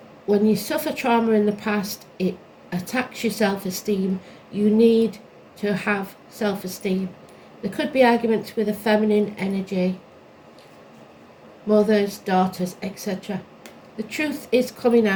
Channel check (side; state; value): both; identical; correlation 1.00